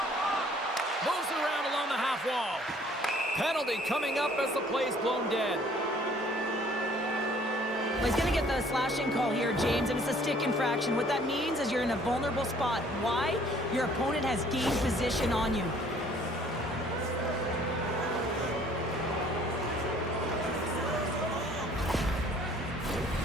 Moves it around along the half wall. Penalty coming up as the play's blown dead. Well, he's going to get the slashing call here, James, and it's a stick infraction. What that means is you're in a vulnerable spot. Why? Your opponent has gained position on you.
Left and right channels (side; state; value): both; normal; correlation 0.57